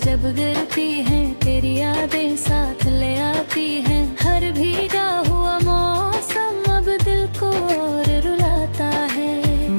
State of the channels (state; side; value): inverted; both; correlation -1.00